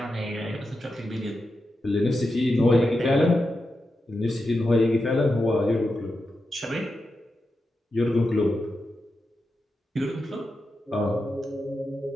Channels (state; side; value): normal; both; correlation 0.88